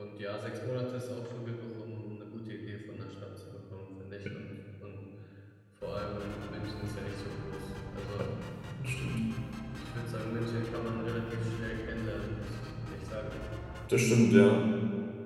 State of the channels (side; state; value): both; identical; correlation 1.00